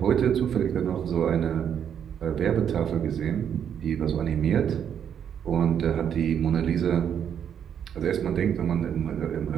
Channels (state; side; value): quieter; left; 8.6 dB